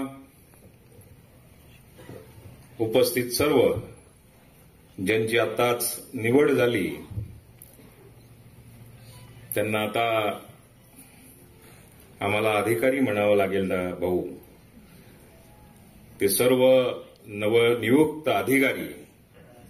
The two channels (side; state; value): both; identical; correlation 1.00